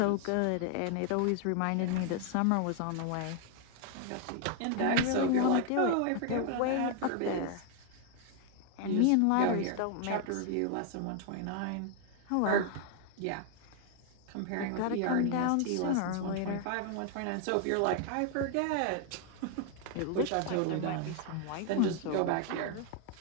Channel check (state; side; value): different; both; correlation 0.00